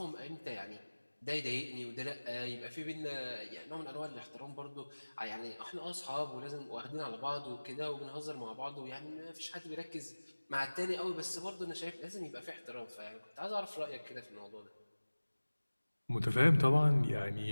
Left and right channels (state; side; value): inverted; both; correlation -1.00